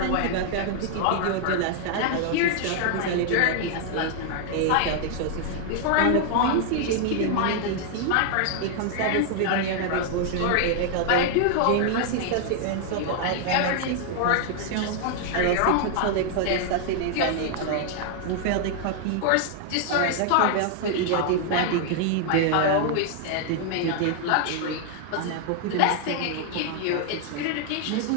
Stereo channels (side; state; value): both; different; correlation 0.00